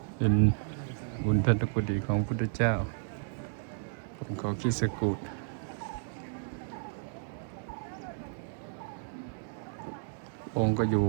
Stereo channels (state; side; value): silent; left; 56 dB below the other